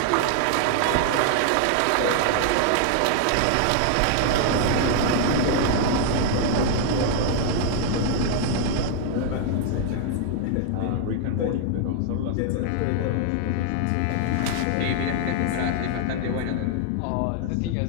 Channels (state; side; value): different; both; correlation 0.00